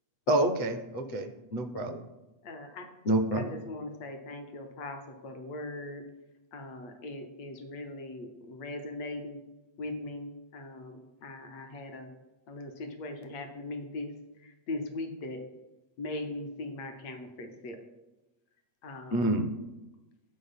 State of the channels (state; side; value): late; right; 8.2 ms